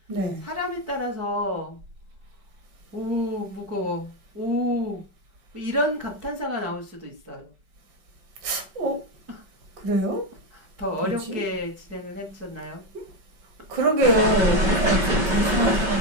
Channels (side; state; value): left; late; 5.2 ms